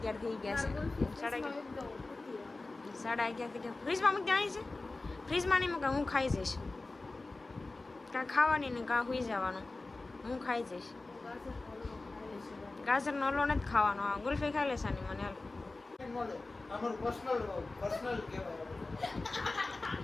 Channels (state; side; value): quieter; right; 3.3 dB